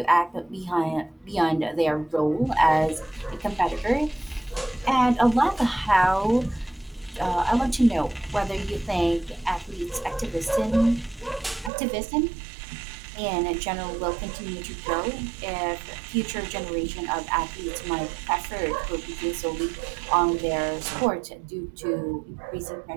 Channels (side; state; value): left; drops out; at 11.7 s